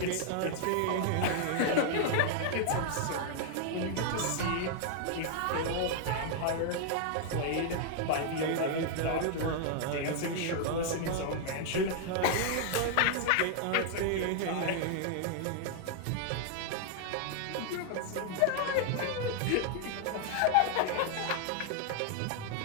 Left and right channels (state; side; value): different; both; correlation 0.00